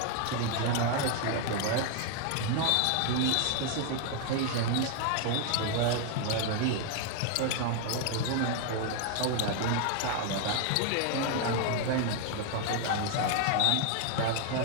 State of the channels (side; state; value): both; different; correlation 0.00